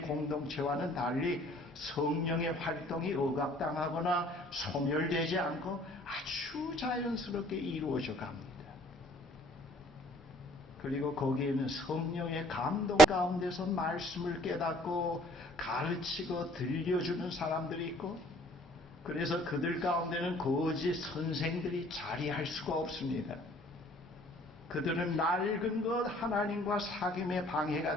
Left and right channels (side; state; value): both; normal; correlation 0.57